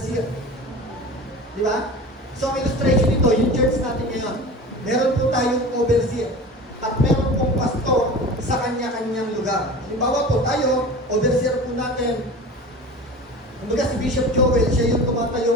Di ba? So, ang illustration nito, yung church natin ngayon, meron po tayong overseer at meron pong pastor sa kanya-kanyang lugar. Halimbawa po, tayo, overseer po natin. Kumbaga si Bishop Joel, siya yung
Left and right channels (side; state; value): both; normal; correlation 0.35